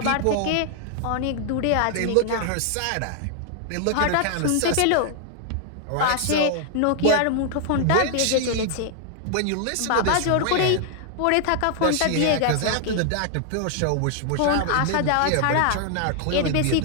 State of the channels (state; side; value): different; both; correlation 0.00